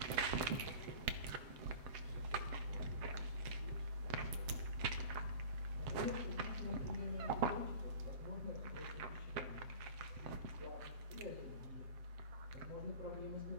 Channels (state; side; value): late; left; 7.5 ms